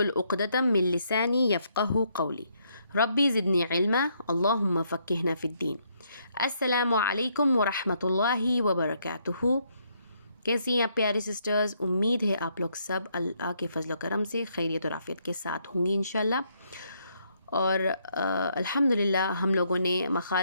उक़दतम मिन लिसानी यफ़क़हू क़ौली रब्बी ज़िदनी इल्मा अल्लाहुम्मा फ़क़्क़िहना फ़िद्दीन। अस्सलामु अलैकुम व रहमतुल्लाहि व बरकातुहू। कैसी हैं आप प्यारी सिस्टर्स? उम्मीद है आप लोग सब अल्लाह के फ़ज़ल व करम से खैरियत और आफ़ियत के साथ होंगी इंशाअल्लाह। और अल्हम्दुलिल्लाह हम लोगों ने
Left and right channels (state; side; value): inverted; both; correlation -0.73